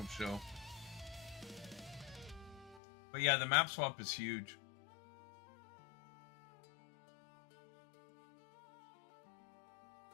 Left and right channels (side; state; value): right; drops out; at 2.8 s